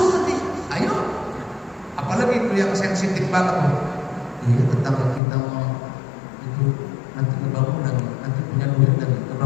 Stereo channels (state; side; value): drops out; right; at 5.2 s